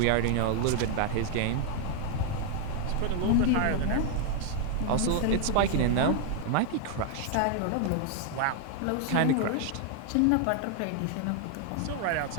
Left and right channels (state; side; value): different; both; correlation 0.00